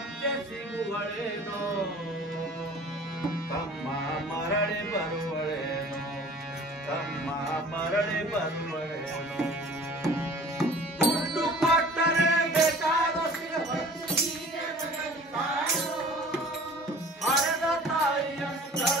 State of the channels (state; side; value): normal; both; correlation 0.47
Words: ಸಿಗುವಳೇನೋ ತಮ್ಮ ಮರಳಿ ಬರುವಳೇನೋ ತಮ್ಮ ಮರಳಿ ಬರುವಳೇನೋ ದುಡ್ಡು ಕೊಟ್ಟರೆ ಬೇಕಾದ ಹಡೆದ ತಾಯಿಯನ್ನು